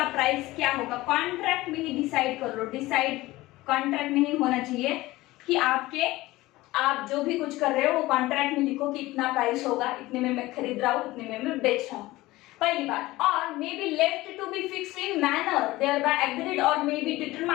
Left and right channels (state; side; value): quieter; right; 18.6 dB